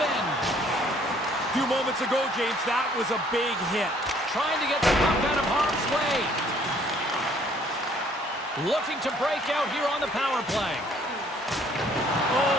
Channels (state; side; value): normal; both; correlation 0.61